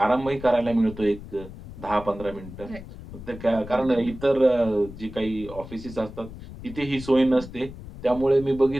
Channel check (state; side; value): noise; left; rumble, 14 dB below the sound